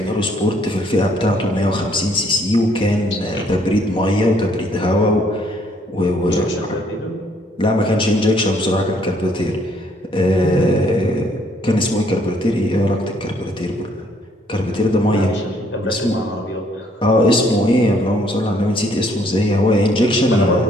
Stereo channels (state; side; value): normal; both; correlation 0.66